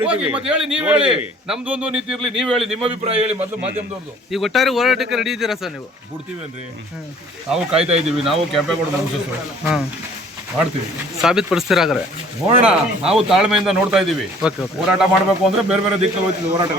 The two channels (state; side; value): normal; both; correlation 0.53